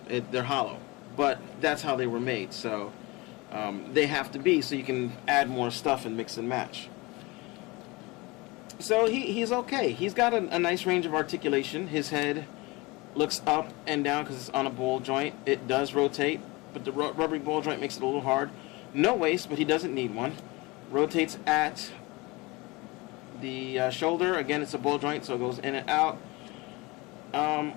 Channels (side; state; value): right; quieter; 24.1 dB